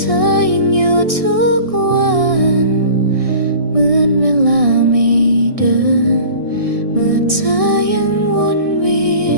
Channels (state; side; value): late; left; 1.6 ms